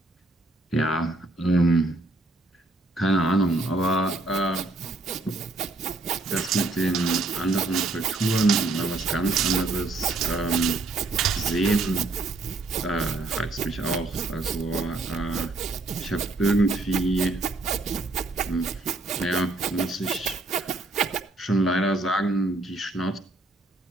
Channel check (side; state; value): left; quieter; 3.0 dB